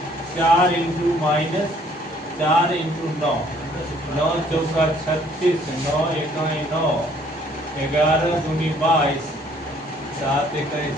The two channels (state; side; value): normal; both; correlation 0.61